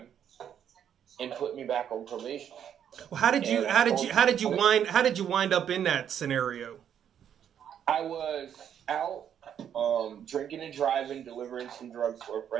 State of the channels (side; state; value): left; quieter; 9.1 dB